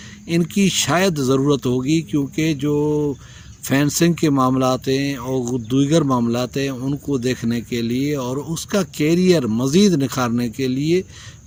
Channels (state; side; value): identical; both; correlation 1.00